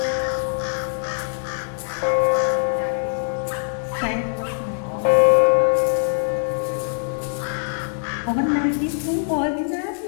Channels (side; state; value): right; silent; digital silence